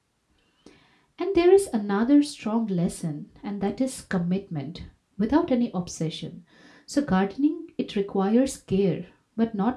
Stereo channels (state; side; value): identical; both; correlation 1.00